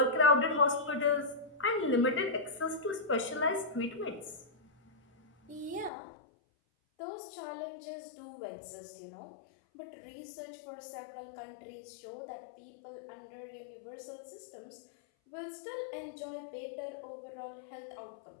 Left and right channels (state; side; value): drops out; right; at 5.9 s